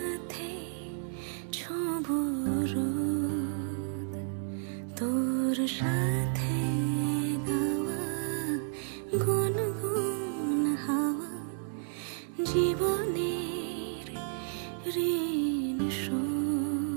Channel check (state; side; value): silent; left; digital silence